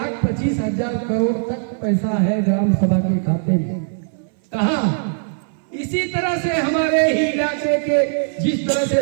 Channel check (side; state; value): left; silent; 62 dB below the other